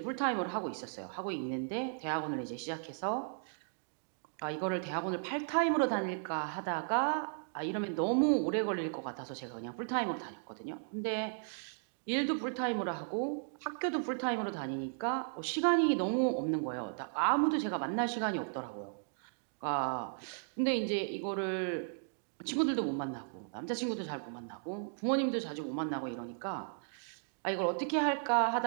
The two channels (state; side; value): silent; left; digital silence